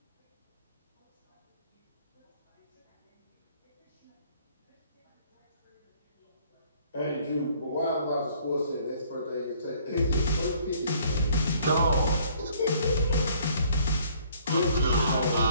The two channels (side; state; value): both; inverted; correlation -0.59